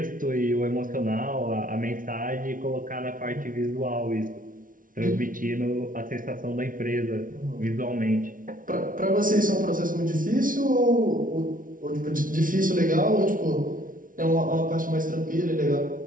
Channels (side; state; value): left; late; 0.39 ms